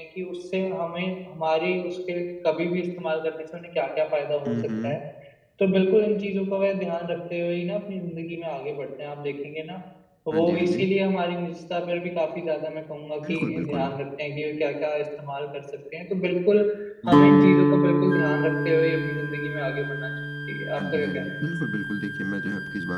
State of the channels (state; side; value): identical; both; correlation 1.00